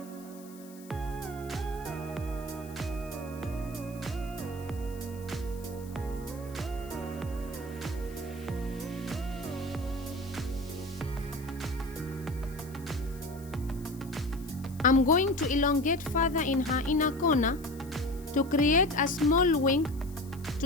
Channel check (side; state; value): left; noise; hiss, 22 dB below the sound